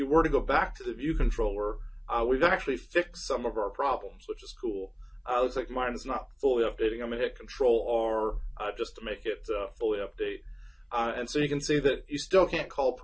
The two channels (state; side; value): identical; both; correlation 1.00